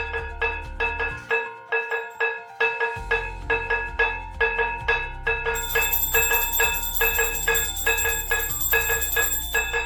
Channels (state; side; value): identical; both; correlation 1.00